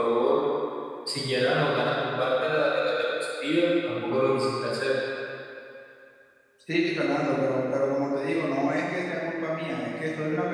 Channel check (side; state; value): both; identical; correlation 1.00